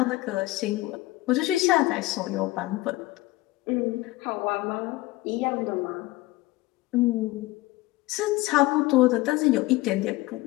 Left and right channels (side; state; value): right; quieter; 18.9 dB